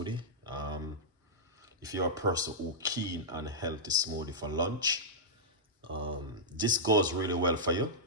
If you're a person who keen on healthy smoothie for lunch, this goes really well for you.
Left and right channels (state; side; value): normal; both; correlation -0.11